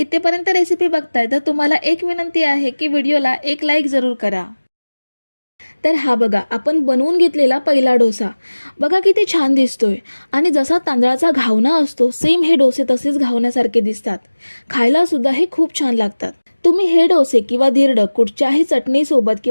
रेसिपी बघताय तर तुम्हाला एक विनंती आहे की व्हिडिओला एक लाईक जरूर करा. तर हा बघा, आपण बनवून घेतलेला पहिला डोसा बघा किती छान दिसतोय, आणि जसा तांदळाचा घावना असतो सेम हे डोसे तसेच घावण्यासारखे दिसतात. खायला सुद्धा हे खूप छान लागतात. तुम्ही हे डोसे किंवा धिरडं कुठच्याही चटणीसोबत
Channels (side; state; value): both; inverted; correlation -1.00